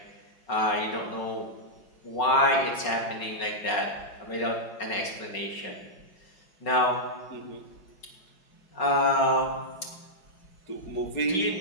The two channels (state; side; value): late; right; 5.4 ms